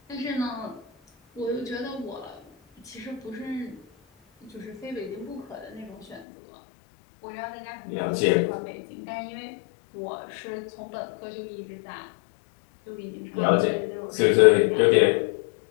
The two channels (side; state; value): right; drops out; at 6.2 s